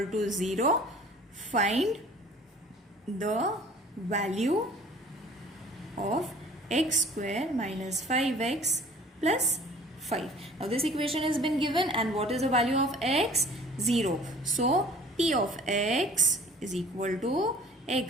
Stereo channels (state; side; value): normal; both; correlation 0.50